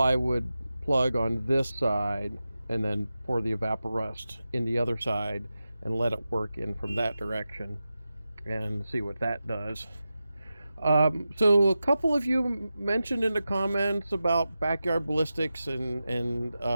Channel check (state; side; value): inverted; both; correlation -0.92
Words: plug on this side and then pour the Evaporust in the other side and let it work in from that direction and see what that does. So a couple of you mentioned in the comments about backyard ballistics and